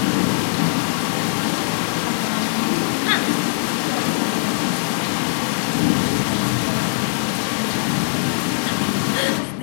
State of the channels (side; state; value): right; silent; digital silence